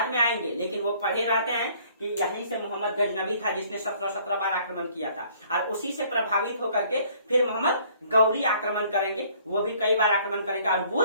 में आएंगे, लेकिन वो पढ़े रहते हैं कि यहीं से मोहम्मद गजनबी था जिसने 17 बार आक्रमण किया था, और उसी से प्रभावित होकर के फिर मोहम्मद गौरी आक्रमण करेंगे, वो भी कई बार आक्रमण करेंगे। और वो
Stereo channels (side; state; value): both; inverted; correlation -0.59